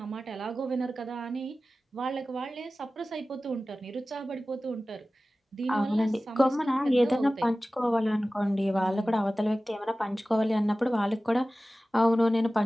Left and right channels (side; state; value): both; normal; correlation 0.96